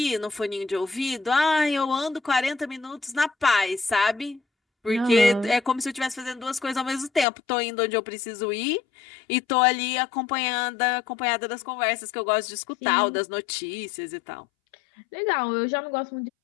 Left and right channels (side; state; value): right; drops out; at 7.2 s